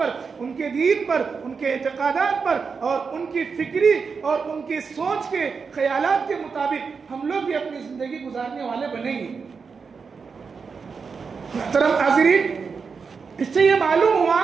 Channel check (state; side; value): quieter; left; 5.3 dB